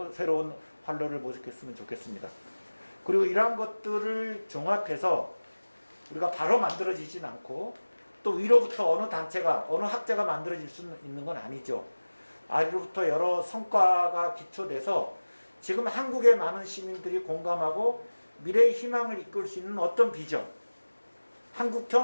새로운 활로를 모색했으면 좋겠습니다. 그리고 이러한 것들을 종합해서 우리가 바로 만들어지진 않고 또 위로부터 어느 단체가 어느 학자가 만들어질 수 있는 건 아니죠. 아래로부터 여러 성과가 기초돼서 지금 한국의 많은 시민들이 공감하고 미래의 희망을 이끌 수 있는 어떤 비전,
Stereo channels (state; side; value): inverted; both; correlation -1.00